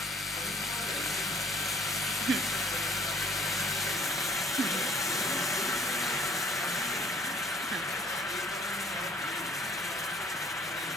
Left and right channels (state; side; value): normal; both; correlation 0.57